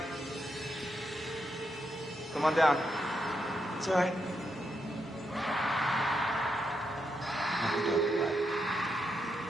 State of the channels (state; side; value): normal; both; correlation 0.82